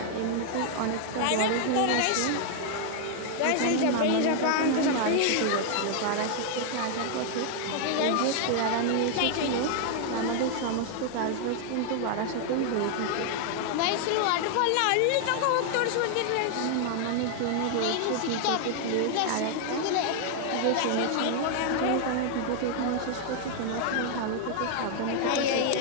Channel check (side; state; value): both; different; correlation 0.00